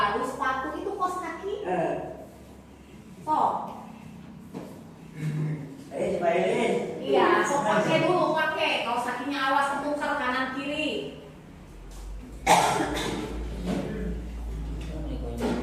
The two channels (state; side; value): identical; both; correlation 1.00